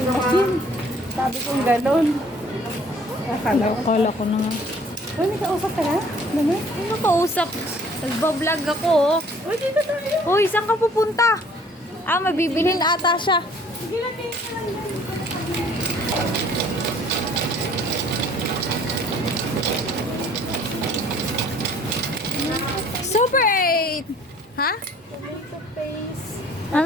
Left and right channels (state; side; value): normal; both; correlation 0.55